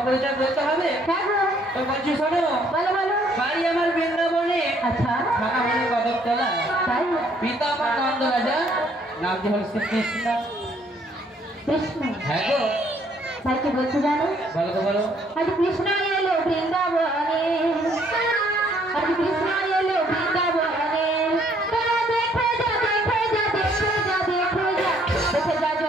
পরিচয় বলতে হবে? হ্যাঁ গো। তো বলছি শোনো। বলো বলো। বাড়ি আমার বৃন্দাবনে। আচ্ছা। থানা হলো কদমতলা। তাই? পিতা আমার নন্দ রাজা, নাম কি হল শ্রীকৃষ্ণ। কৃষ্ণ? হ্যাঁ গো। তাই কি বলছো জানো? বলো তো বলো। আজ কৃষ্ণ এলো বৃন্দাবনে, আজ কৃষ্ণ এলো বৃন্দাবনে, তোরা দেখে যা দেখে যা দেখে যা দেখে যা দেখে যা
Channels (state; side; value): normal; both; correlation 0.65